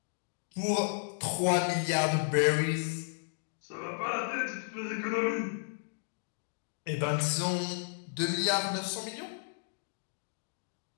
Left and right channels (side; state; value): right; silent; digital silence